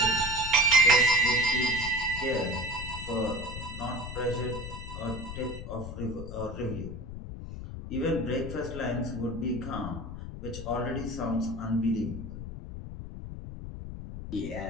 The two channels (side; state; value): left; noise; rumble, 9 dB below the sound